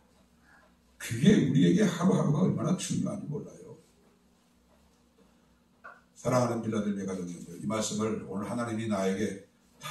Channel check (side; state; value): both; identical; correlation 1.00